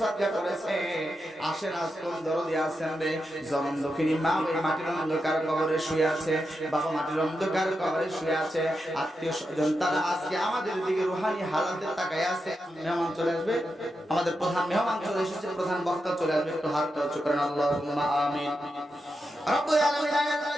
সাদকা করেছে। আসেন আজ কোন দরদি আছেন রে, জনম দক্ষিণী মা ওই মাটির অন্ধকার কবরে শুয়ে আছে, বাবা মাটির অন্ধকার কবরে শুয়ে আছে, আত্মীয় স্বজন তারা আজকে আমাদের দিকে রুহানি হালাতে তাকায় আছে। মেহমান চলে আসবে, আমাদের প্রধান মেহমান চলে এসেছে, প্রধান বক্তা চলে আসবে, একটু হাতটা উঁচু করেন, আল্লাহুম্মা আমিন। রব্বুল আলামিন আল্লাহ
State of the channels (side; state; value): both; normal; correlation 0.87